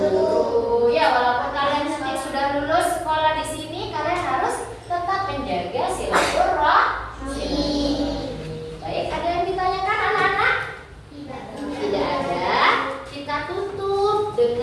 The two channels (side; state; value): both; identical; correlation 1.00